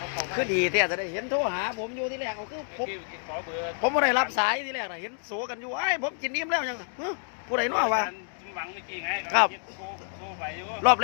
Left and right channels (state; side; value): silent; right; 59 dB below the other